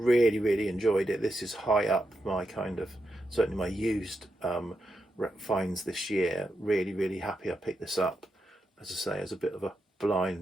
enjoyed it. This is high up my kind of, certainly my used finds this year. Really happy I picked this up, as I say, as a bit of a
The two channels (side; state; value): both; normal; correlation 0.86